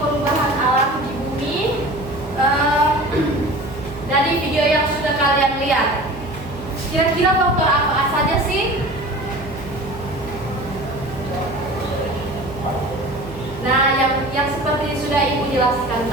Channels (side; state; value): right; noise; hum, 14 dB below the sound